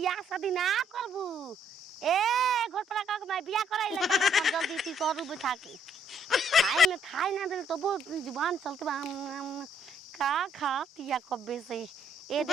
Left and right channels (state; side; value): normal; both; correlation 0.67